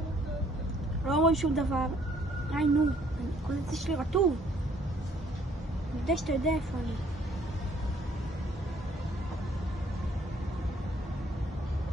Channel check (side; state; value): both; normal; correlation 0.63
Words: לא רואים שום דבר. נו, כל זה שלי רטוב. אני יודע שאתה יודע איפה אני.